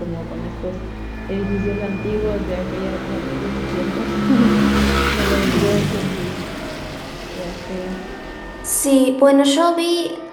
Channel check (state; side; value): identical; both; correlation 1.00